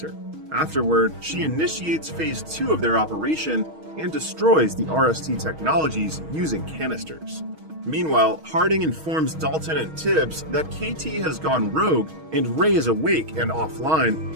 Afterward, she initiates phase 2 of their operation and destroys the RST technologies using canisters. Meanwhile, Harding informs Dalton and Tibbs that KT has gone rogue and Ray is awake and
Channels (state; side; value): late; left; 6.3 ms